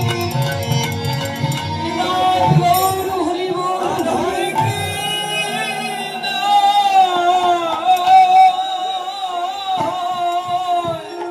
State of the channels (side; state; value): both; identical; correlation 1.00